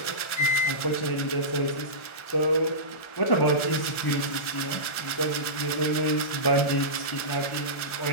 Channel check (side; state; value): right; late; 1.4 ms